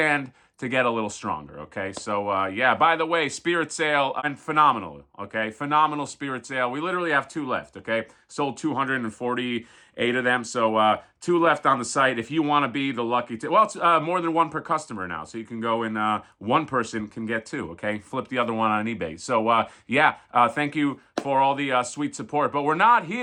to get a little stronger. Okay, so yeah. By the way, Spirit Sale and phenomenal. Okay, phenomenal Spirit Sale. We literally have two left. Okay, sold 248 of them. So two left on the site. If you want to be the lucky, well, it's more than one per customer now. So you can go and one person can get two. Okay, flip the other one on eBay. So yeah, thank you for all the sweet support. But we're not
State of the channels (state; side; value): identical; both; correlation 1.00